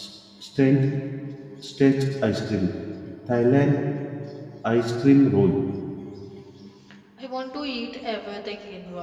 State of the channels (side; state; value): both; identical; correlation 1.00